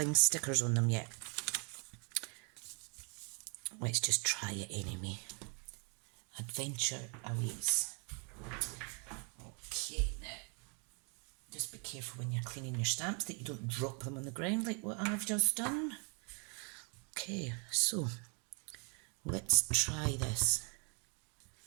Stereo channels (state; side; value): quieter; left; 37.1 dB